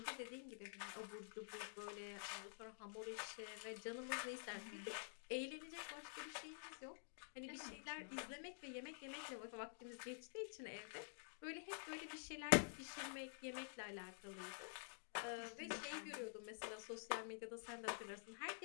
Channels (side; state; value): right; silent; digital silence